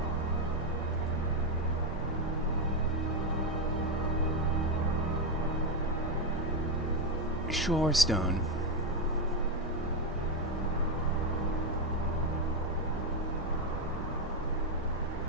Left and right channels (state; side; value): normal; both; correlation 0.06